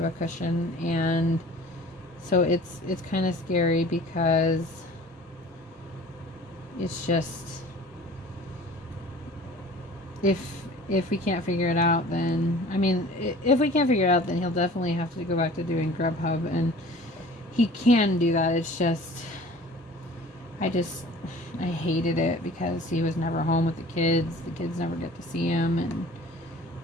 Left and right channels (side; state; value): both; normal; correlation 0.46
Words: a cushion, and so it's kind of scary, because it's just, if we can't figure it out, then I mean, if we can't figure it out, then he'll definitely have to go back to doing Grubhub, and he can do that. It's just I hated it because he was never home with the kids. The kids never get to see him, and